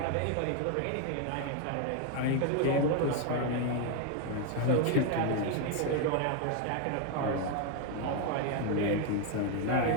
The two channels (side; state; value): both; different; correlation 0.01